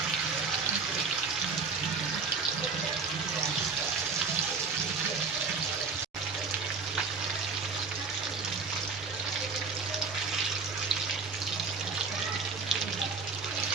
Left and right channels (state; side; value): quieter; left; 4.8 dB